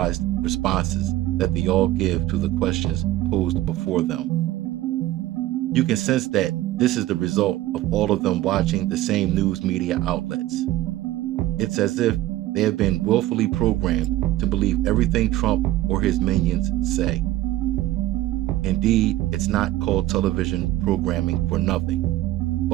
responses that they all give to the questions posed before them. You can sense that this is the result of all of them watching the same news media outlets. It's as if they have been willfully programmed to believe everything Trump or his minions say. Indeed, it's not called television programming for nothing,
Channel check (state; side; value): quieter; left; 15.6 dB